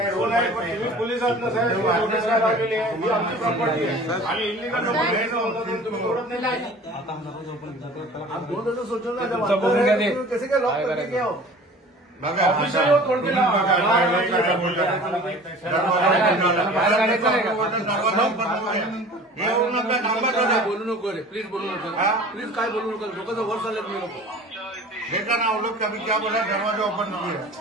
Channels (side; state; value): both; normal; correlation 0.43